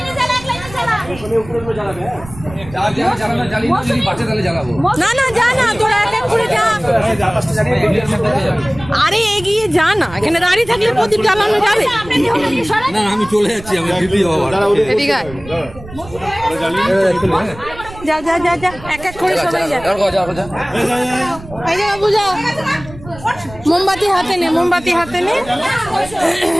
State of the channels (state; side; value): noise; right; rumble, 17 dB below the sound